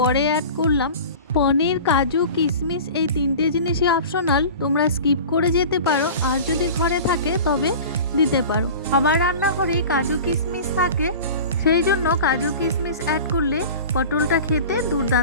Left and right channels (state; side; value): inverted; both; correlation -0.36